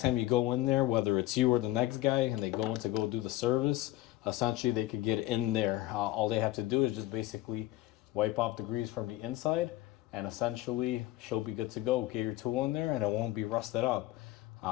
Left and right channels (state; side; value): quieter; right; 16.4 dB